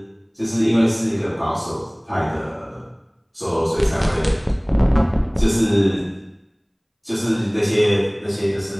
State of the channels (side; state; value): both; identical; correlation 1.00